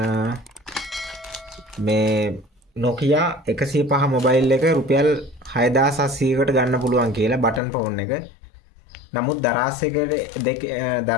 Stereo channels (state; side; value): drops out; right; at 7.6 s